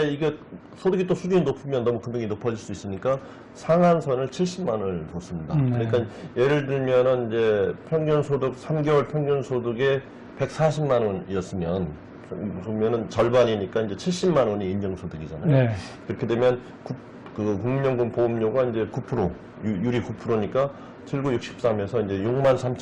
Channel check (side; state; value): both; identical; correlation 1.00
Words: 이게 소득이 또 수준이 높으면 너무 금액이 높아질 수 있으니까 상한선을 70만 원을 뒀습니다. 그러니까 예를 들면은 이제 평균 소득 3개월 평균 소득에 140만 원이었으면 그러면은 절반이니까 이제 70만 원이 인정소득이잖아요. 네. 그렇게 되면 그 국민연금 보험료가 이제 9% 유리 9%니까 7963에서 이제 6만